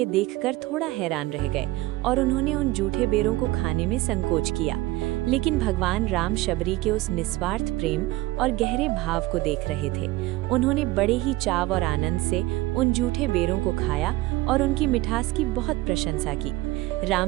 देखकर थोड़ा हैरान रह गए और उन्होंने उन जूठे बेरों को खाने में संकोच किया, लेकिन भगवान राम शबरी के उस निस्वार्थ प्रेम और गहरे भाव को देख रहे थे। उन्होंने बड़े ही चाव और आनंद से उन जूठे बेरों को खाया और उनकी मिठास की बहुत प्रशंसा की।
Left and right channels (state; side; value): quieter; left; 18.6 dB